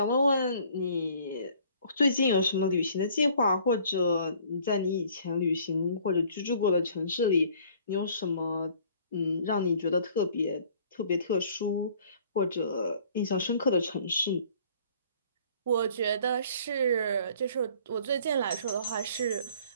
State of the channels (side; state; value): both; inverted; correlation -0.55